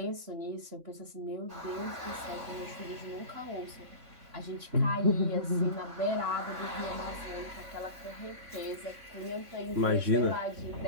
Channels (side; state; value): left; late; 3.6 ms